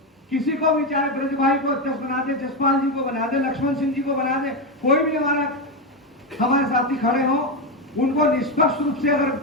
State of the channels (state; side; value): normal; both; correlation 0.10